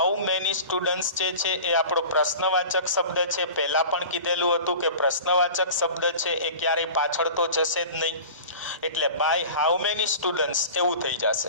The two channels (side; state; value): both; inverted; correlation -0.37